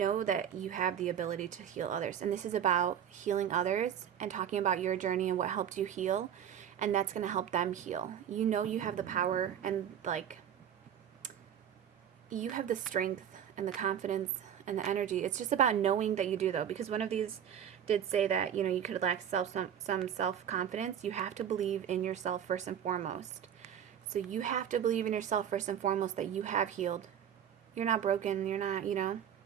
that you have the ability to heal others, and this is about healing others and talking about your journey and what helped you heal, and that's going to help them heal. You know you have the power, and you have the strength and the confidence and the energy. It's just about knowing that you do, though, because one of these did say that you could lack some self-confidence. You have to believe in yourself first and foremost. So you have to believe in yourself first and foremost, that you have healed. You're not broken. You're not,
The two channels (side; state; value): left; quieter; 9.3 dB